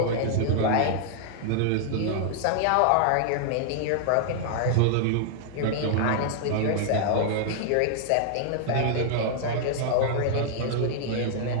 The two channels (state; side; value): different; both; correlation -0.01